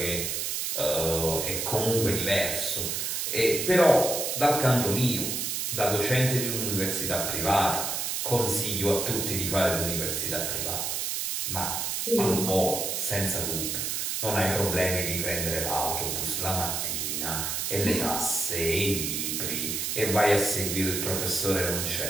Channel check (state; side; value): noise; right; hiss, 1 dB below the sound